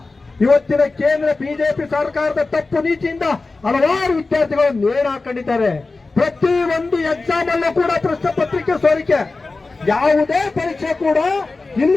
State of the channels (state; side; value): quieter; right; 3.6 dB